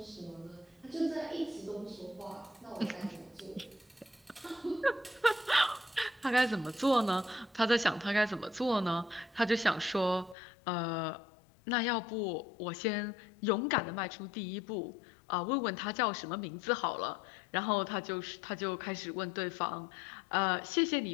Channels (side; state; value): right; drops out; at 10.4 s